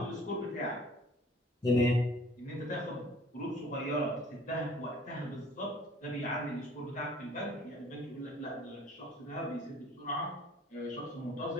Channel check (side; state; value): both; normal; correlation 0.52